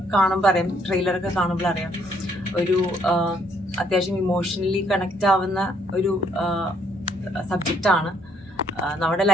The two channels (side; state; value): both; normal; correlation 0.68